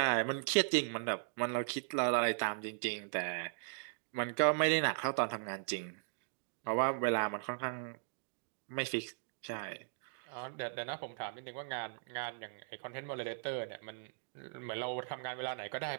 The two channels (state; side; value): silent; left; digital silence